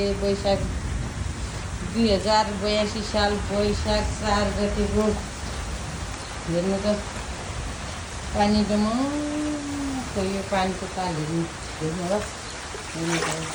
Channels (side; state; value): both; identical; correlation 1.00